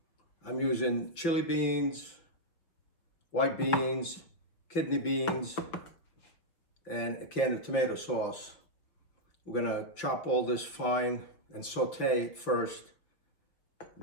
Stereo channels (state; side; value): late; right; 5.7 ms